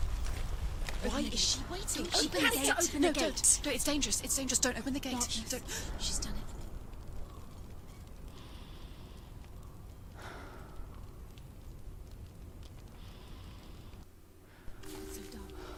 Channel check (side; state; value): both; identical; correlation 1.00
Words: Why is she waiting? She Open the has gate. to open No, the gate. don't. No, it's dangerous. It's dangerous. Don't open the gate. No, don't. She's done it.